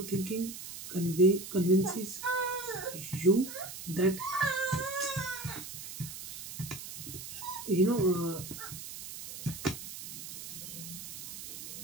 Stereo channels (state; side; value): noise; right; hiss, 10 dB below the sound